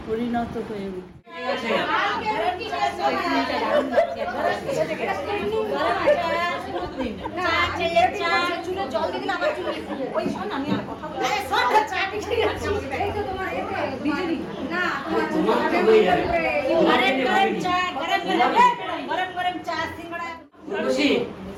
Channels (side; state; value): both; identical; correlation 1.00